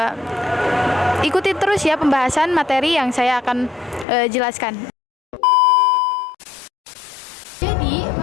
Ikuti terus ya pembahasan materi yang saya akan jelaskan. Jadi,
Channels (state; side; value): drops out; right; at 4.0 s